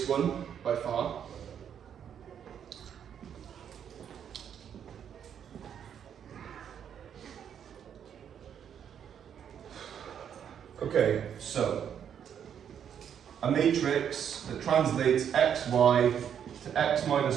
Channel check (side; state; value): left; quieter; 8.6 dB